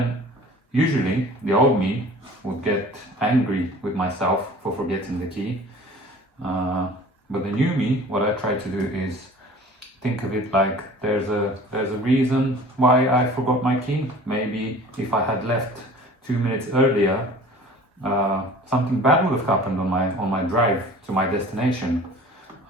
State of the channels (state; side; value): normal; both; correlation 0.45